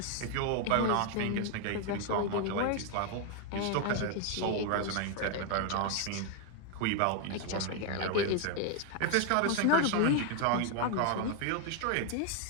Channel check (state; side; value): different; both; correlation 0.01